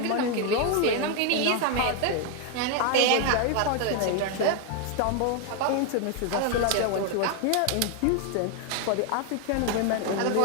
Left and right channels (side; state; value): both; different; correlation 0.01